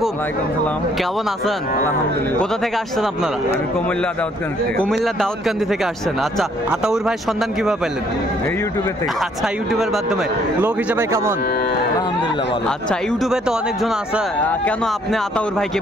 কেমন আছেন? কোথা থেকে আসছেন আপনারা? কুমিল্লা দাউদকান্দি থেকে আসছেন। আচ্ছা, আতাউর ভাই সন্ধান কিভাবে পেলেন? ইউটিউবে থেকে। আচ্ছা, ইউটিউবের মাধ্যমে। লোক হিসেবে কেমন? আলহামদুলিল্লাহ ভালো। আচ্ছা, ইউটিউবে তো অনেকজন আছে, কেন আপনি আতাউর ভাইকে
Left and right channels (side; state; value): both; normal; correlation 0.65